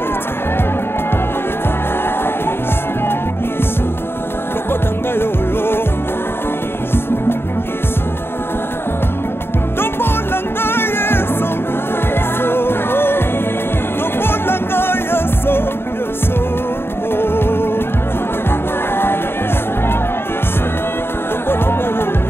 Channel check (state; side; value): late; right; 0.11 ms